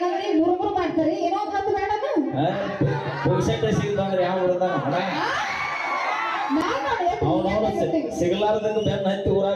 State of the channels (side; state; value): both; identical; correlation 1.00